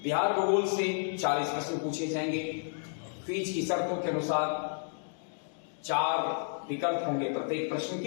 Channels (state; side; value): silent; right; digital silence